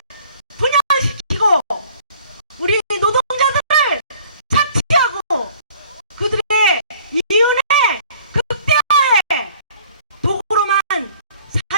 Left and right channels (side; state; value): both; inverted; correlation -0.54